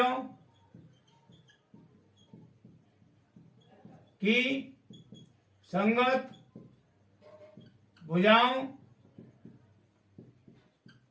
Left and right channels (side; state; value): both; identical; correlation 1.00